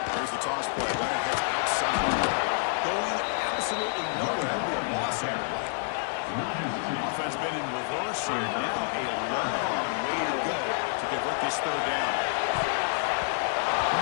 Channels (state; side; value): silent; right; digital silence